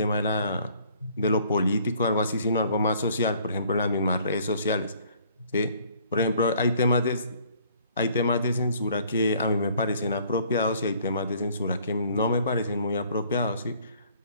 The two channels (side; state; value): both; inverted; correlation -0.59